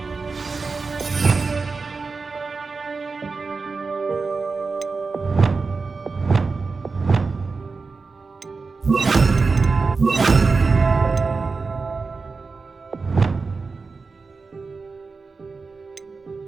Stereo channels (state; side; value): quieter; left; 4.4 dB